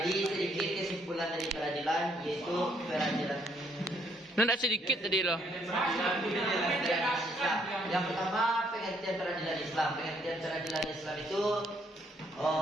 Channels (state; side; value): normal; both; correlation 0.69